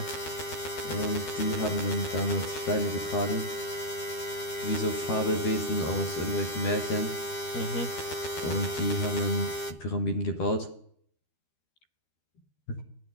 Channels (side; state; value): right; late; 13 ms